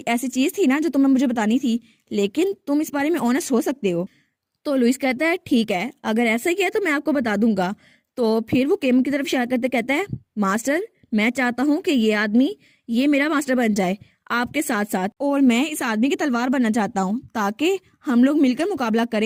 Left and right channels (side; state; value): both; identical; correlation 1.00